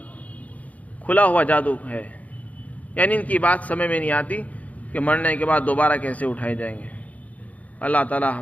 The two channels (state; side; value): late; right; 0.071 ms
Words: کھلا ہوا جادو ہے، یعنی ان کی بات سمجھ میں نہیں آتی کہ مرنے کے بعد دوبارہ کیسے اٹھائے جائیں گے۔ اللہ تعالیٰ